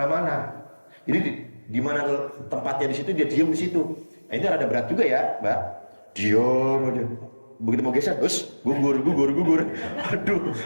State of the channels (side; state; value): both; inverted; correlation -1.00